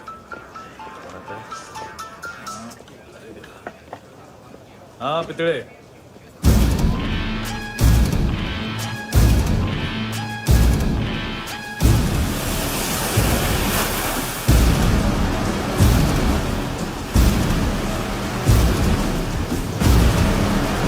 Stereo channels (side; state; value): both; identical; correlation 1.00